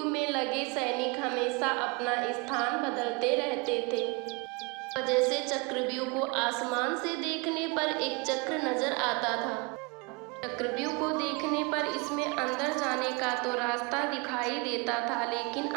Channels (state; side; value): quieter; left; 29.3 dB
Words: में लगे सैनिक हमेशा अपना स्थान बदलते रहते थे। वजह से चक्रव्यूह को आसमान से देखने पर एक चक्र नजर आता था। चक्रव्यूह को देखने पर इसमें अंदर जाने का तो रास्ता दिखाई देता था, लेकिन